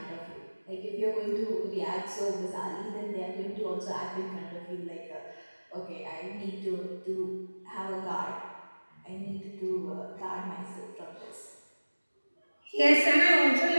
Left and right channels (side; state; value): both; inverted; correlation -1.00